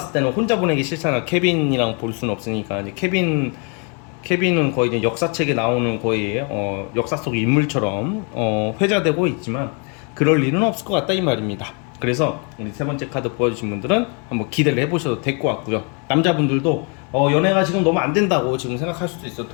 때는 혼자 보내기 싫잖아. 케빈이랑 볼 수는 없으니까. 이제 케빈은 거의 이제 역사책에 나오는 거의 역사 속 인물처럼 회자되고 있지만 그럴 일은 없을 것 같다 이 말입니다. 그래서 우리 세 번째 카드 보여주신 분들은 한번 기대를 해보셔도 될 것 같고요. 남자분들도 연애가 지금 너무 안 된다고 지금 생각할 수도 있어요.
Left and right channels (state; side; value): quieter; right; 35.7 dB